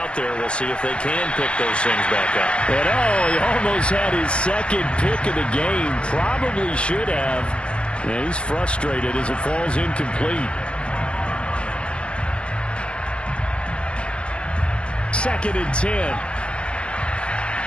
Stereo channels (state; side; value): late; right; 0.058 ms